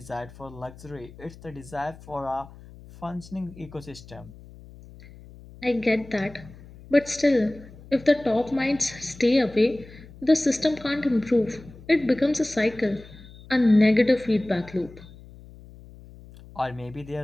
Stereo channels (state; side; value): noise; left; hum, 20 dB below the sound